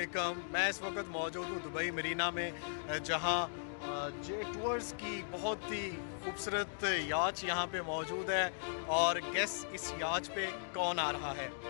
मैं इस वक्त मौजूद हूँ दुबई मरीना में, जहाँ जे टूर्स की बहुत ही खूबसूरत याच यहाँ पे मौजूद है। और गेस इस याच पे कौन आ रहा है?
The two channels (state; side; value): silent; right; digital silence